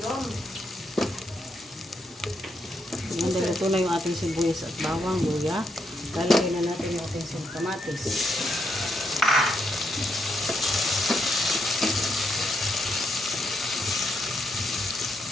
na yung ating sibuyas at bawang, luya. Lalagay na natin yung ating kamatis.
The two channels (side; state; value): both; normal; correlation 0.79